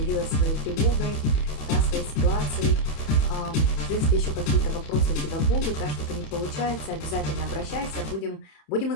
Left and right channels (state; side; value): late; right; 31 ms